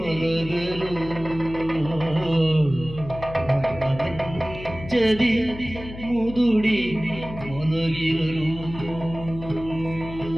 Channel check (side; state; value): left; noise; hum, 12 dB below the sound